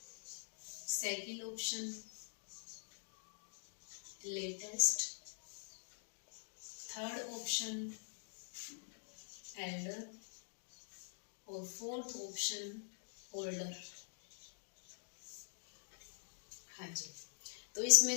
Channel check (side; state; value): right; silent; digital silence